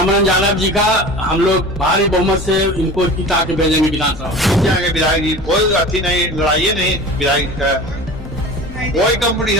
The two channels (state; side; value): normal; both; correlation 0.36